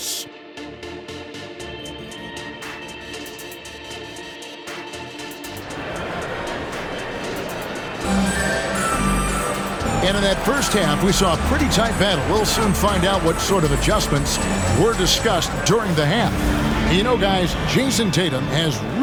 And in that first half, we saw a pretty tight battle. We'll soon find out what sort of adjustments were discussed during the half. You know, guys, Jason Tatum has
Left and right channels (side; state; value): both; identical; correlation 1.00